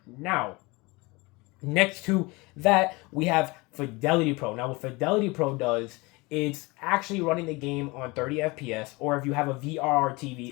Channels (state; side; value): quieter; right; 24.6 dB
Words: Now, next to that, we have Fidelity Pro. Now, what Fidelity Pro does, it's actually running the game on 30 FPS, or if you have a VRR